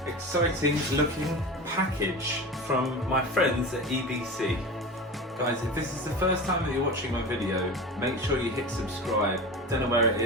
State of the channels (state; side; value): normal; both; correlation 0.29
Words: exciting looking package from my friends at EBC. Guys, if this is the first time that you're watching my video, make sure you hit subscribe. Don't know where it